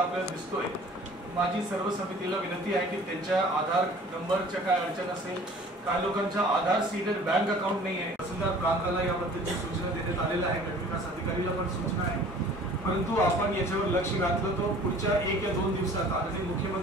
दिसतोय, माझी सर्व समितीला विनंती आहे की त्यांच्या आधार नंबरच्या काय अडचण असेल, काही लोकांच्या आधार सीडेड बँक अकाउंट नाही आहे, तहसीलदार प्रांताला याबद्दलची सूचना देण्यात आलेल्या आहे, गटविकास अधिकारीला पण सूचना आहे. परंतु आपण याच्यावर लक्ष घातलं तो पुढच्या 1 या 2 दिवसात आणि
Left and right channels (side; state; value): both; normal; correlation 0.48